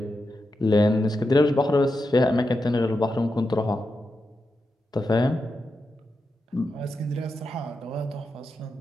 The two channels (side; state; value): both; normal; correlation 0.88